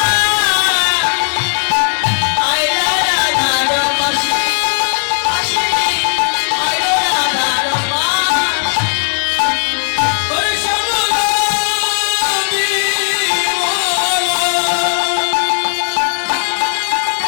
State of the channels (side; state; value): right; silent; digital silence